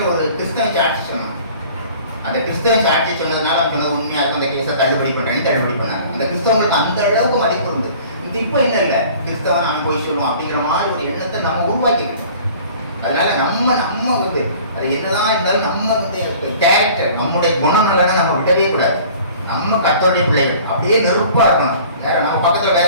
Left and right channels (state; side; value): inverted; both; correlation -0.48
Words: ஒரு கிறிஸ்தவ சாட்சி சொன்னோம். அந்த கிறிஸ்தவ சாட்சி சொன்னதுனால அவங்க சொன்னது உண்மையாக இருக்கும், அந்த கேஸை தள்ளுபடி பண்ணாங்க. அந்த கிறிஸ்தவங்களுக்கு அந்த அளவுக்கு மதிப்பு இருந்து. இப்போ என்ன இல்லை, கிறிஸ்தவன் அவன் போய் சொல்லுவோம் அப்படிங்கிற மாதிரி ஒரு எண்ணத்தை நம்ம உருவாக்கிக்கணும். அதனால நம்ம வந்து அது என்னதான் இருந்தாலும் நம்ம வந்து கேரக்டர், நம்முடைய குணநலனை நம்ம விடவே கூடாது. நம்ம கர்த்தருடைய பிள்ளைகள் அப்படியே நெருப்பா இருக்கணும். வேற நம்ம பக்கத்துல